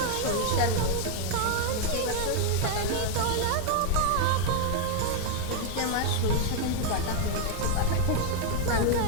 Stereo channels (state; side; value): different; both; correlation 0.00